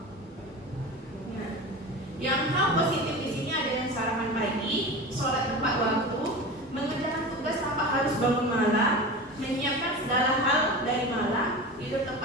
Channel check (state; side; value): normal; both; correlation 0.30